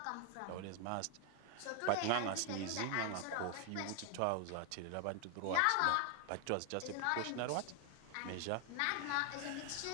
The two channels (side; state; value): both; different; correlation 0.00